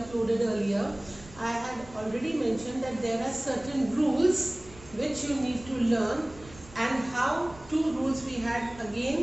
earlier, I had already mentioned that there are certain rules which you need to learn, and how two rules we had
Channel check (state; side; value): noise; right; rumble, 20 dB below the sound